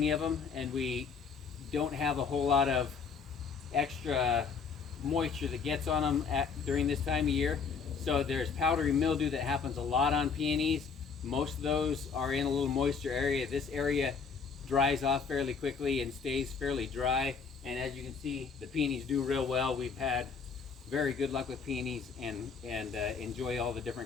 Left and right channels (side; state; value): right; quieter; 5.6 dB